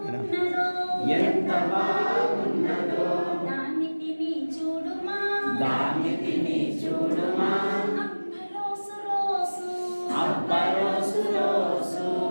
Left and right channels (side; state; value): both; inverted; correlation -1.00